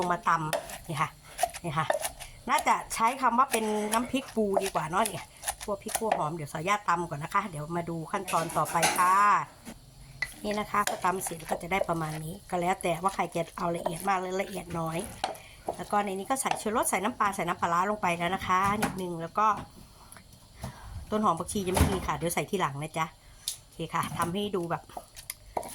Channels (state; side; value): identical; both; correlation 1.00